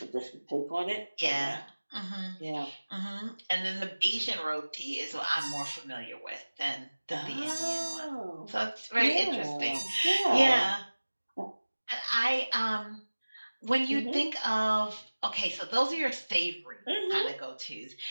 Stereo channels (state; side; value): inverted; both; correlation -1.00